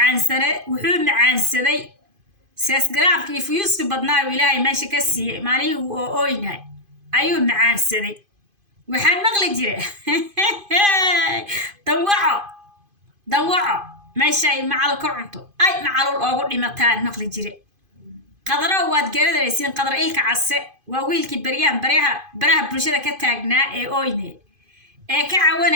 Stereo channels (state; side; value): late; left; 2.5 ms